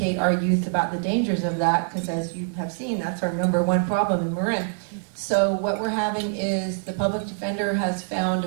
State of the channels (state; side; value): silent; left; digital silence